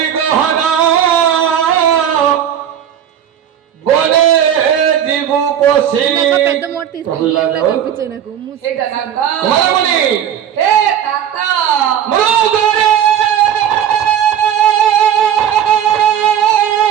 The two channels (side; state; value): left; quieter; 9.6 dB